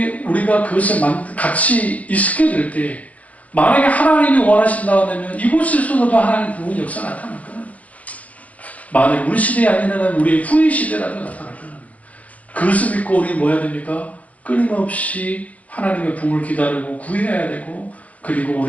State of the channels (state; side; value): late; right; 0.069 ms